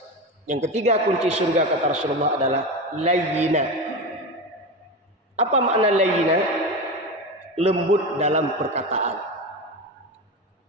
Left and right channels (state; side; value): normal; both; correlation 0.21